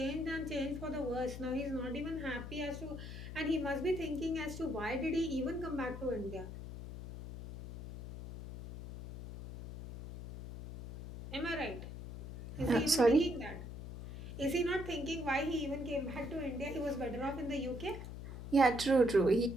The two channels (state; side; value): noise; left; hum, 9 dB below the sound